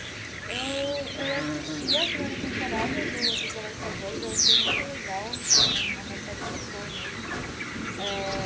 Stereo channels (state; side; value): identical; both; correlation 1.00